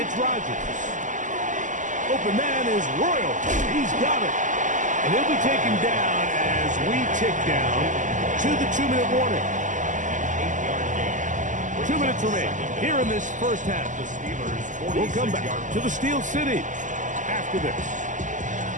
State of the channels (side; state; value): left; late; 0.37 ms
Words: Rodgers. Open man is Royal. He's got it. And he'll be taken down as we tick down to the 2-minute warning. 2 minutes remain here in this first half. We'll come back to the Steel City after this.